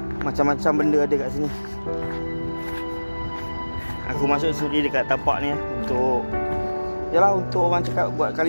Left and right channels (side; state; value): both; inverted; correlation -1.00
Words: Macam-macam benda ada kat sini. Aku masuk sendiri dekat tapak ni untuk, yalah, untuk orang cakap buat